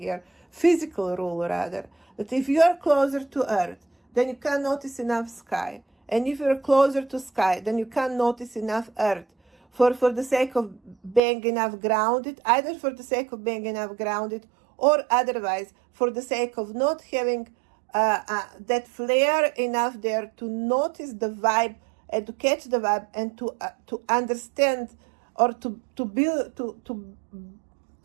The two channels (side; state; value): left; drops out; at 11.2 s